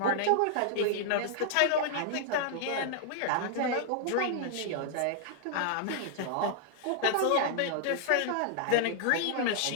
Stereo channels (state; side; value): different; both; correlation -0.01